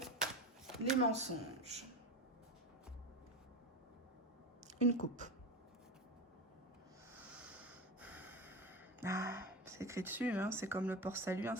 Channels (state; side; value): normal; both; correlation 0.22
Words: les mensonges. Une coupe. Ah, c'est écrit dessus, hein, c'est comme le port-salut,